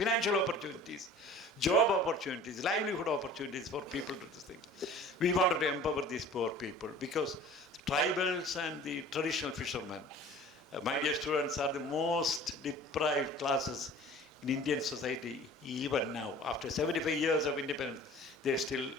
opportunities, job opportunities, livelihood opportunities for people to do this thing. We wanted to empower these poor people because tribals and the traditional fishermen, my dear students, are the most deprived classes in Indian society even now. After 75 years of independence, they still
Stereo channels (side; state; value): both; normal; correlation 0.45